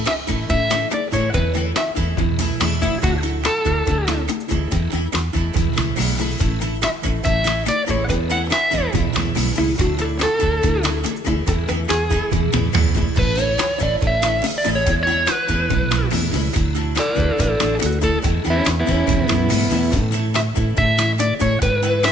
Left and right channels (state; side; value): normal; both; correlation 0.72